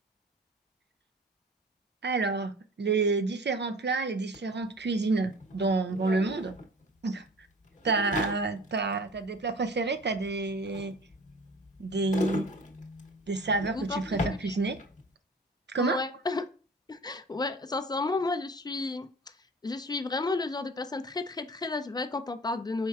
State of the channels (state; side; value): normal; both; correlation 0.42